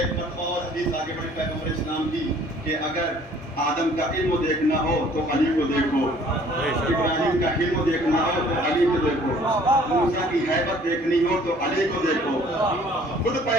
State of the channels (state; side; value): normal; both; correlation 0.55